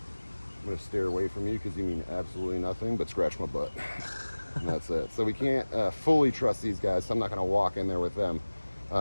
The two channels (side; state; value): both; inverted; correlation -1.00